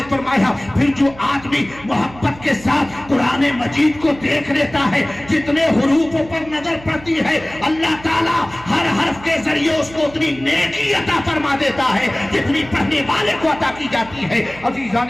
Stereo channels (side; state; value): right; noise; hum, 19 dB below the sound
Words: فرمایا پھر جو آدمی محبت کے ساتھ قرآن مجید کو دیکھ لیتا ہے، جتنے حروفوں پر نظر پڑتی ہے، اللہ تعالیٰ ہر حرف کے ذریعے اس کو اتنی نیکی عطا فرما دیتا ہے جتنی پڑھنے والے کو عطا کی جاتی ہے.